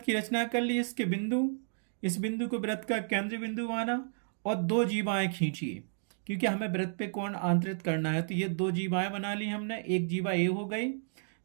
की रचना कर ली, इसके बिंदु, इस बिंदु को वृत्त का केंद्र बिंदु माना और दो जीवाएं खींचिए, क्योंकि हमें वृत्त पे कोण आंतरित करना है। तो ये दो जीवाएं बना ली हमने। एक जीवा ए हो गई,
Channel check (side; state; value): left; silent; digital silence